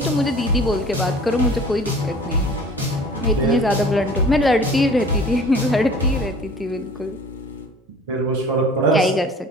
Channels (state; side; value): normal; both; correlation 0.46